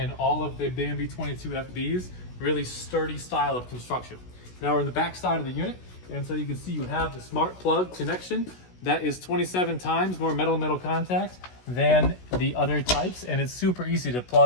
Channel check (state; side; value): late; right; 16 ms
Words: all of the Bambi 22FBs. Really sturdy style of construction. Now we're in the back side of the unit, and so you can see you have the smart plug connection. That is 27 times more metal-metal contact than the other types, and it's super easy to